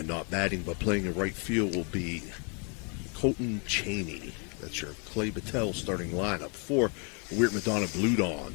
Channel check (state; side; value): quieter; right; 37.4 dB